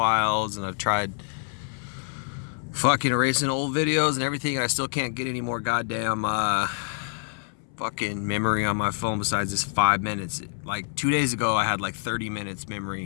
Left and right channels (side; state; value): right; silent; 61 dB below the other